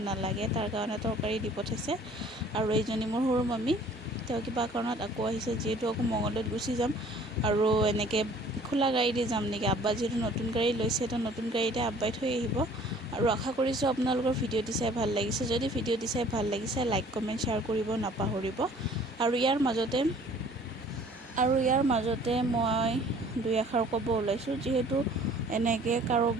নালাগে, তাৰ কাৰণে তৰকাৰী দি পঠাইছে। আৰু এইজনী মোৰ সৰু মামী, তেওঁ কিবা কাৰণত আকৌ আহিছে, যিহেতু আকৌ মঙলদৈত গুচি যাম। আৰু এনেকৈ খোলা গাড়ী দি যাম নেকি, আব্বা যিহেতু নতুন গাড়ী লৈছে, তো নতুন গাড়ীতে আব্বাই থৈ আহিব। আৰু আশা কৰিছোঁ আপোনালোকৰ ভিডিঅ'টি চাই ভাল লাগিছে। যদি ভিডিঅ'টি চাই ভাল লাগিছে, লাইক কমেণ্ট শ্বেয়াৰ কৰিব নাপাহৰিব। আৰু ইয়াৰ মাজতে মই দুই এষাৰ ক'ব ওলাইছোঁ, যিহেতু এনেকৈ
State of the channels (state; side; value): normal; both; correlation 0.53